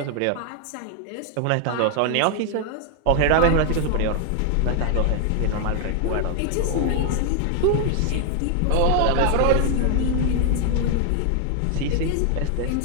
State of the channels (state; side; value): different; both; correlation 0.00